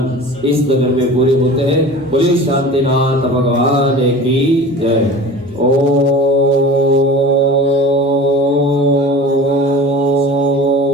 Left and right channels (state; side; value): normal; both; correlation 0.38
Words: इस नगर में पूरे होते हैं। बोले शांतिनाथ भगवान की जय। ओ